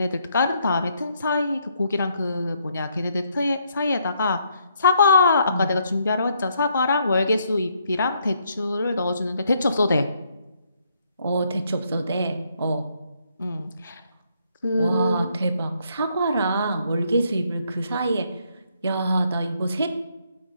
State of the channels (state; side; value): inverted; both; correlation -0.72